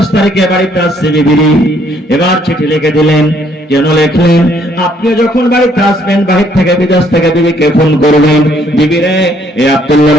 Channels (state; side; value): normal; both; correlation 0.66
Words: তারিখে বাড়িতে আসছি বিবি। এবার চিঠি লিখে দিলেন। কেন লিখলেন? আপনি যখন বাড়িতে আসবেন, বাহির থেকে বিদেশ থেকে বিবিকে ফোন করবেন, বিবি রে, এ